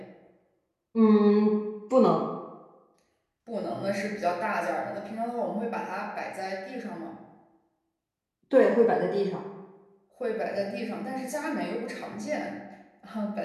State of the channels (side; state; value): both; identical; correlation 1.00